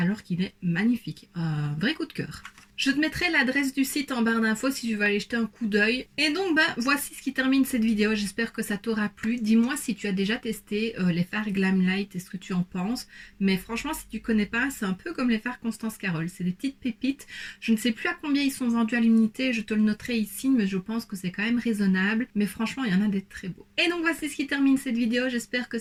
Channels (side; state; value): both; identical; correlation 1.00